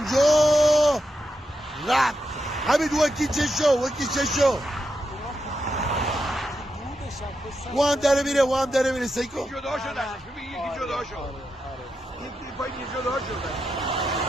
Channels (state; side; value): normal; both; correlation 0.86